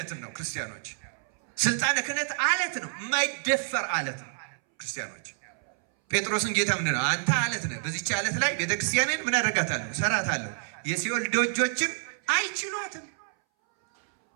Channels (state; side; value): silent; left; 59 dB below the other